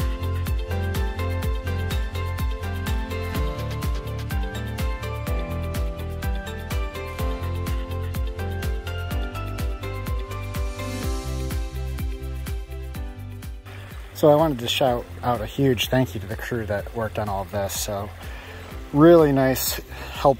So I wanted to shout out a huge thank you to the crew that worked on all of this. So really nice,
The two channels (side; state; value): both; identical; correlation 1.00